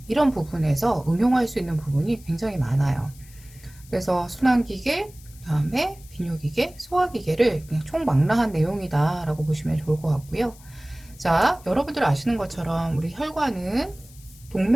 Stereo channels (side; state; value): left; noise; hiss, 23 dB below the sound